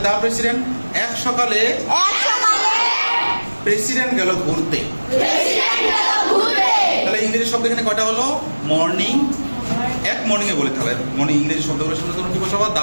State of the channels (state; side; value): inverted; both; correlation -1.00